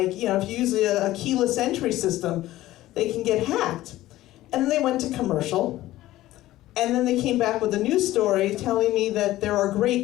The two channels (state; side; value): quieter; right; 15.7 dB